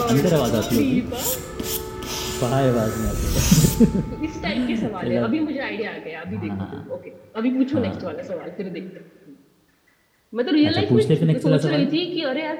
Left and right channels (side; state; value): both; identical; correlation 1.00